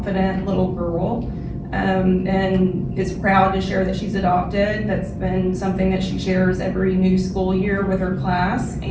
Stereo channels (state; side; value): identical; both; correlation 1.00